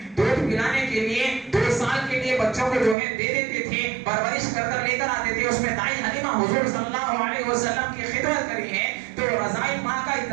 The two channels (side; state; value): left; drops out; at 3.0 s